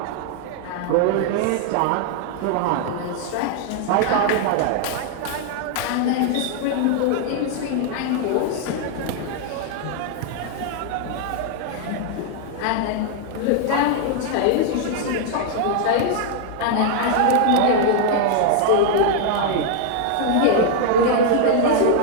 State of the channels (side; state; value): both; different; correlation 0.00